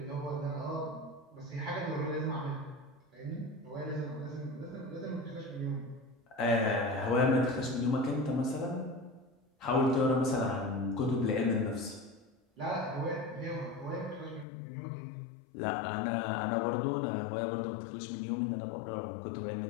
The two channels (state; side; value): drops out; right; at 14.5 s